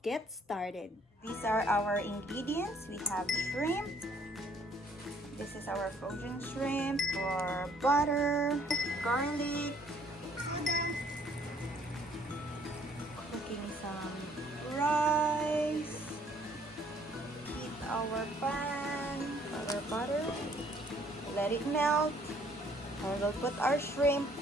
get started. These are our ingredients. We have shrimp. This is our frozen shrimp, or butter, garlic, cooking some rice, heat our pan, our butter, let it melt, and we'll put our shrimp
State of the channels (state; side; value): normal; both; correlation 0.62